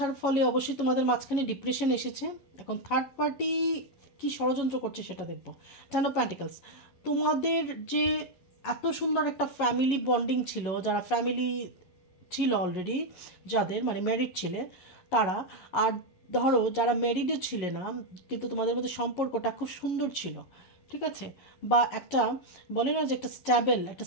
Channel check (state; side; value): late; right; 11 ms